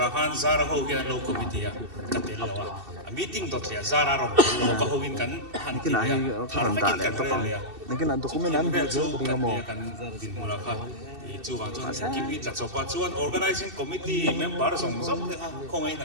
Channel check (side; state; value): left; late; 2.7 ms